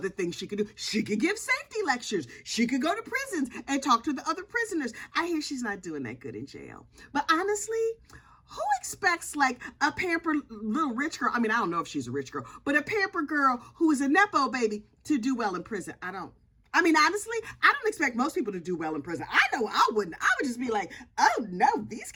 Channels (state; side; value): identical; both; correlation 1.00